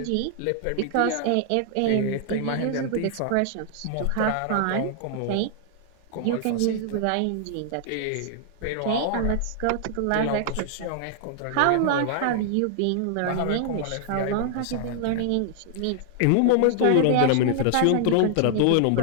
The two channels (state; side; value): different; both; correlation 0.00